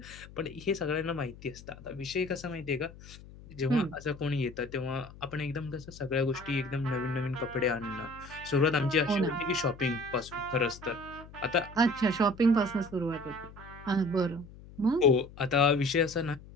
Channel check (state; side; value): noise; left; hum, 18 dB below the sound